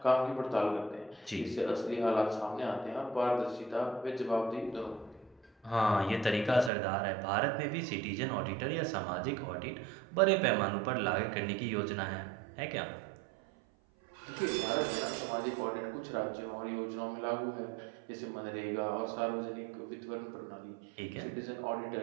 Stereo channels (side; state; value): left; drops out; at 6.7 s